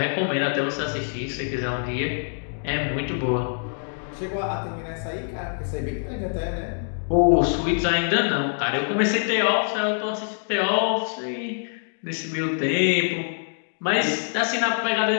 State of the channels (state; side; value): silent; right; digital silence